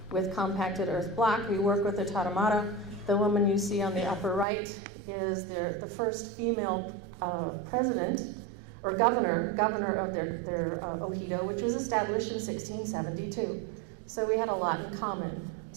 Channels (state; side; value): drops out; left; at 4.5 s